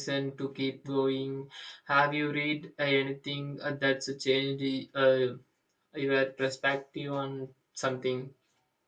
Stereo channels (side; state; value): both; identical; correlation 1.00